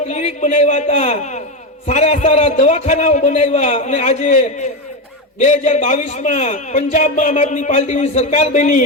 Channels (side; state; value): both; normal; correlation 0.13